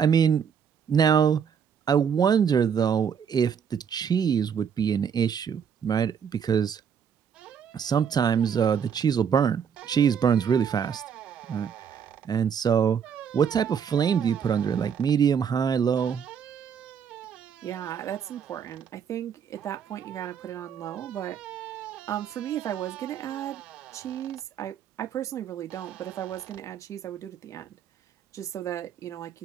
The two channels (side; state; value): left; quieter; 7.5 dB